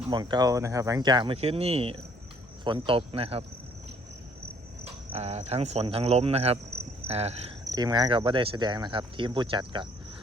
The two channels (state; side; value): normal; both; correlation 0.61